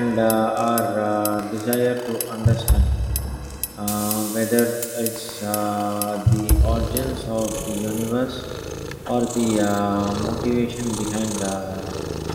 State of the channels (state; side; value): identical; both; correlation 1.00